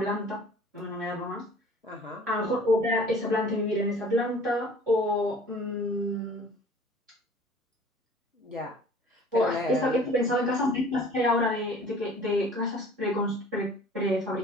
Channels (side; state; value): both; normal; correlation 0.49